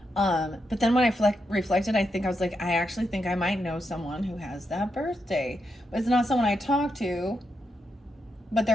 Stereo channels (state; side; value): normal; both; correlation 0.83